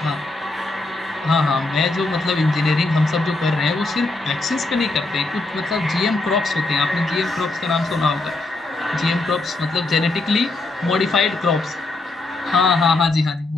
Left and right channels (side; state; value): right; quieter; 3.1 dB